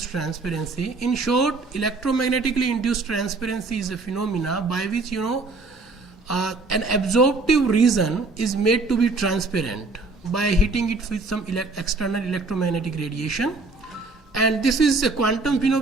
transparency. In short, electromagnetically induced transparency is a phenomena by which an absorptive region is made to be transparent by hitting it with some external electromagnetic radiation, and this is a quantum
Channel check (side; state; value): left; quieter; 3.5 dB